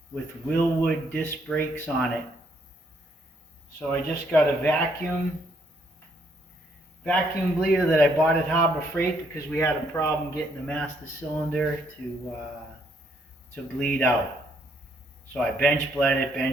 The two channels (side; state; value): both; normal; correlation 0.70